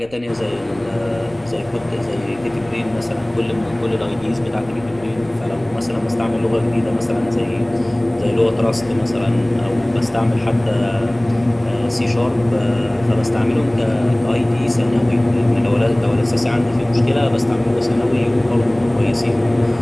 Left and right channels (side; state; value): right; noise; rumble, 24 dB below the sound